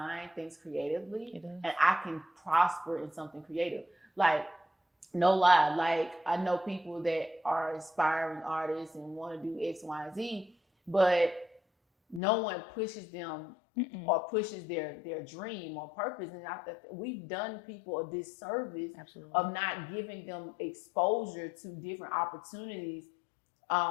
things creatively, and I can prosper in something creative. Like, no lie, like I know people that are aspiring artists and want to do X, Y, and Z, but no one pushes them or pushes their dream or purpose. And we've done people a disservice of not giving them exposure to different opportunities.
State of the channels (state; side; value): drops out; right; at 12.2 s